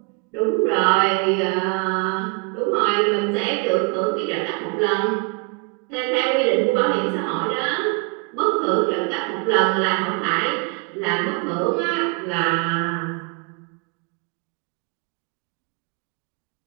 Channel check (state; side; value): quieter; left; 34.0 dB